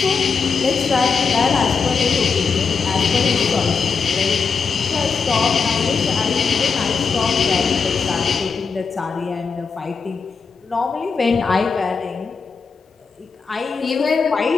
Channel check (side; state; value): right; quieter; 5.3 dB